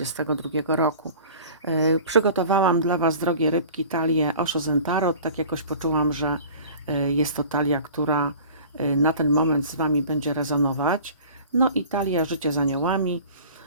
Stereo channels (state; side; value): inverted; both; correlation -0.42